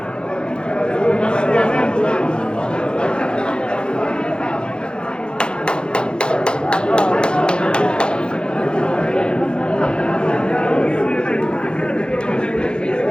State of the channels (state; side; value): late; right; 0.050 ms